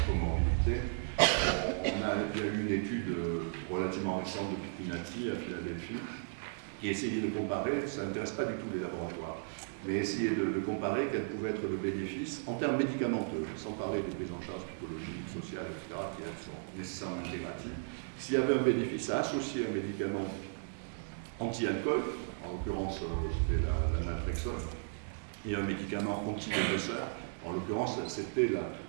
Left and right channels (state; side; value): silent; left; digital silence